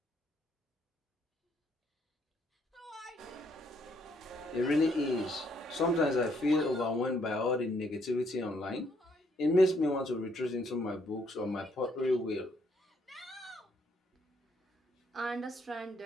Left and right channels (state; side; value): normal; both; correlation 0.70